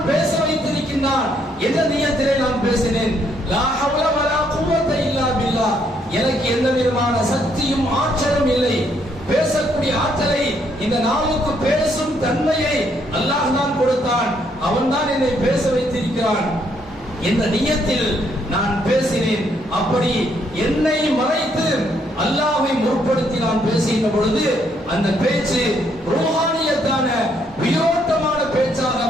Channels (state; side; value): normal; both; correlation 0.71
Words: பேச வைத்திருக்கின்றான் என்ற நியத்திலே நான் பேசினேன். லா ஹவ்ல வலா குவத்த இல்லா பில்லாஹ், எனக்கு எந்த விதமான சக்தியும் ஆற்றலும் இல்லை. பேசக்கூடிய ஆற்றலை, இந்த நாவுக்கு பேசும் தன்மையை அல்லாஹ் தான் கொடுத்தான், அவன் தான் என்னை பேச வைத்திருக்கிறான் என்ற நியத்தில் நான் பேசினேன். அப்படி என்னை மறைத்து அல்லாஹ்வை முற்படுத்தி நான் பேசுகின்ற பொழுது அந்த பேச்சு ரூஹானியத்தான உயிரோட்டமான பேச்சாக